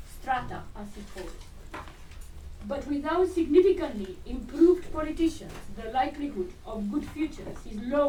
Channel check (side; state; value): both; identical; correlation 1.00